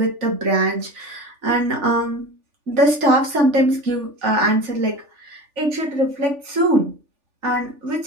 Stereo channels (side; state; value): left; late; 3.4 ms